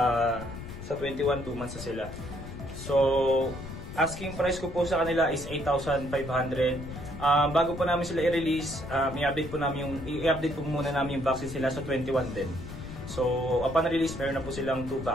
21, 2 months na sila. So, asking price ko po sa kanila is 8,500. Bago po namin sila i-release, i-update po muna namin yung vaccine sila sa 21 din. So, upon release, meron na po silang 2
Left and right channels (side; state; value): left; noise; rumble, 11 dB below the sound